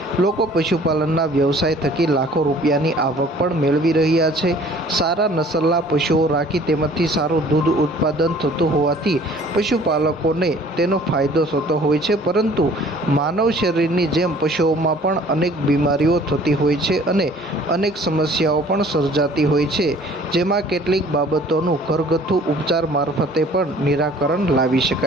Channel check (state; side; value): normal; both; correlation 0.53